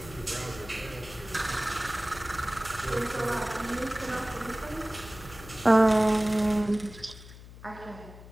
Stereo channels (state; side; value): noise; left; hum, 17 dB below the sound